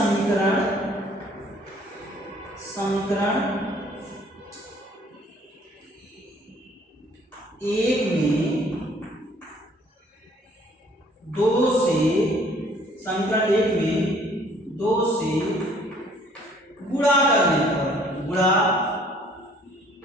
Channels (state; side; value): normal; both; correlation 0.58